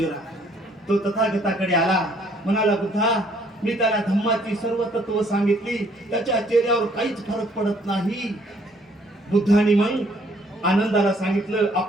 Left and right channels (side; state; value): both; normal; correlation 0.63